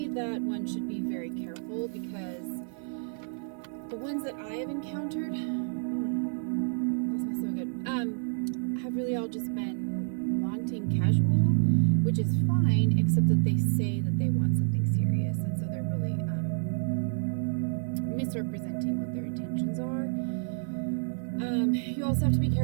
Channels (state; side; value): silent; left; digital silence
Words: that one should be very careful because the ones that I have encountered, smells so good, have really all just been wanting casual, which is fine, except that they say that they want something serious, and so they're really misrepresenting what their intentions are. You also have to be